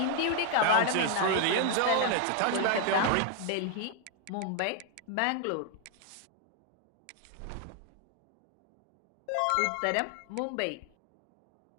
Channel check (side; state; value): both; different; correlation 0.01